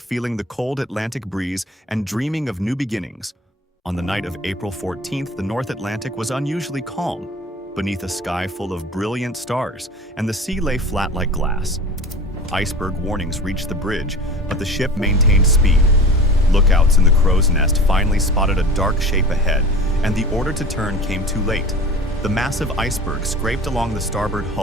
feeling the cold Atlantic breeze and dreaming of new beginnings. On the night of April 14th, the North Atlantic was unusually calm, beneath a sky full of brilliant stars, and the sea lay flat like glass. Iceberg warnings reached the bridge, but the ship maintained speed. Lookouts in the crow's nest finally spotted a dark shape ahead, and the order to turn came too late. The massive iceberg scraped along the starboard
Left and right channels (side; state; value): both; normal; correlation 0.37